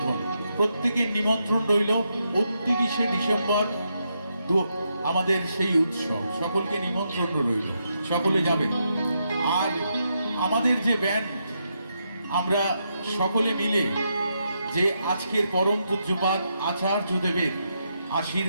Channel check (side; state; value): both; inverted; correlation -0.82